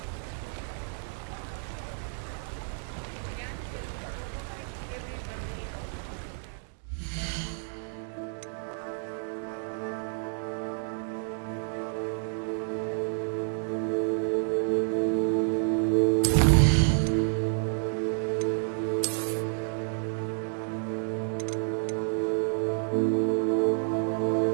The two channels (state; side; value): silent; left; 58 dB below the other